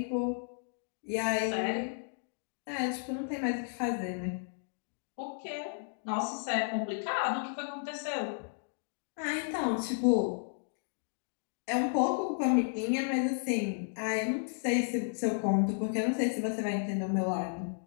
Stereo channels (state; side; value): silent; right; digital silence